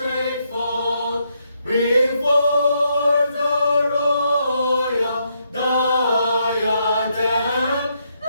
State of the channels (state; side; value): inverted; both; correlation -0.77